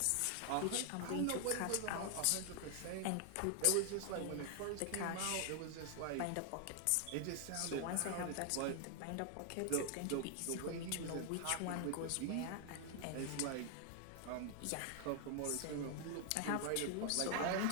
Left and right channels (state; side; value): different; both; correlation 0.00